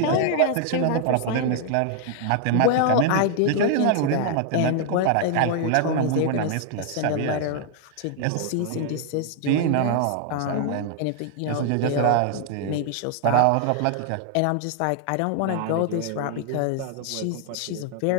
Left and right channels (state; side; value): different; both; correlation 0.00